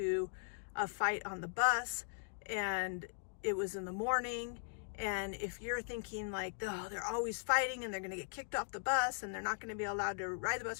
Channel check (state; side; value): silent; right; digital silence